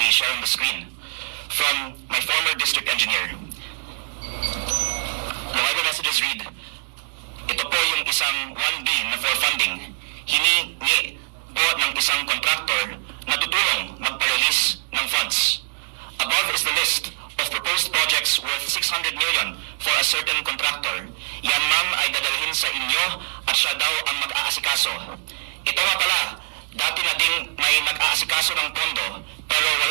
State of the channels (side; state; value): left; silent; digital silence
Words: share on the screen from my former district engineer. The Viber messages read, ito po yung isang 1B na for funding, hiningi po ng isang contractor na tutulong magpa-release ng funds. Above is the list of proposed projects worth 600 million for a certain contractor. Yan ma'am ay dadalhin sa inyo at siya daw ang mag-aasikaso. Ito nga pala, dati na ding may nag-aasikaso ng pondo pero